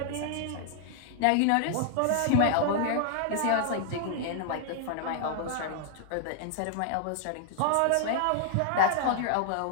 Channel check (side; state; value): both; different; correlation -0.01